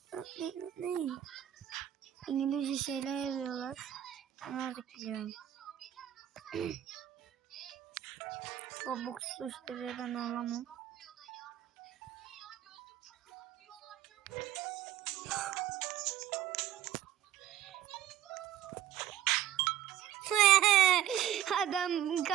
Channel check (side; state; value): left; quieter; 11.9 dB